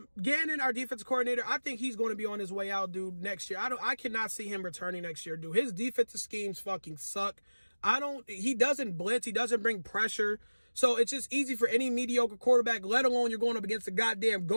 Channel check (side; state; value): both; inverted; correlation -1.00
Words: our defensive coordinator, I think he's going to be on his way out, dude, next year. I cannot see him returning next year, dude. His defensive schemes fucking suck. He doesn't blitz. He doesn't bring pressure. So it's just easy for any mediocre quarterback, let alone you're going up against the goddamn